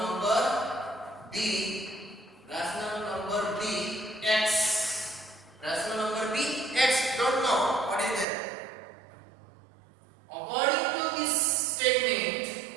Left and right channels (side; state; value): left; drops out; at 8.2 s